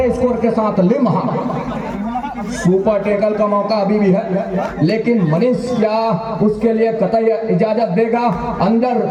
स्कोर के साथ लिम्हा। सुपर टेकल का मौका अभी भी है, लेकिन मनीष क्या उसके लिए कतई इजाजत देगा? अंदर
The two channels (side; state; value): both; identical; correlation 1.00